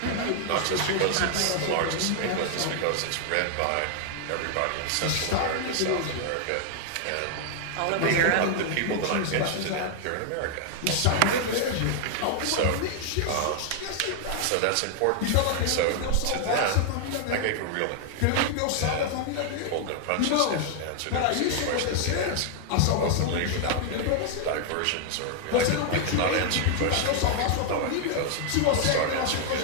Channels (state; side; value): different; both; correlation 0.00